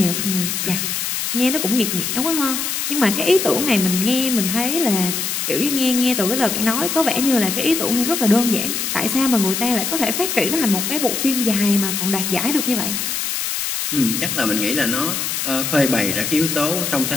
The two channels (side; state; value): left; noise; hiss, 2 dB below the sound